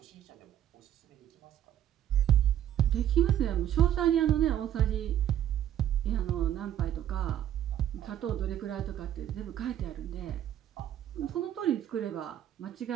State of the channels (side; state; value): left; quieter; 11.1 dB